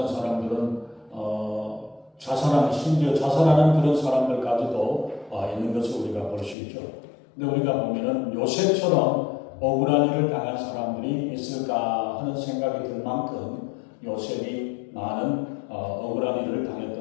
사람들은 자살하는, 심지어 자살하는 그런 사람들까지도 있는 것을 우리가 볼 수 있죠. 근데 우리가 보면은 요셉처럼 억울한 일을 당한 사람들이 있을까 하는 생각이 들 만큼 요셉이 많은 억울한 일을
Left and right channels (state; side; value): drops out; right; at 6.6 s